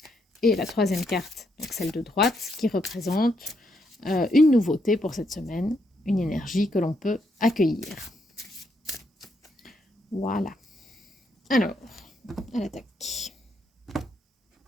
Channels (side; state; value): both; normal; correlation 0.77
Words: Et la troisième carte, donc celle de droite, qui représente une nouveauté pour cette semaine, une énergie que l'on peut accueillir. Voilà. Alors, à l'attaque.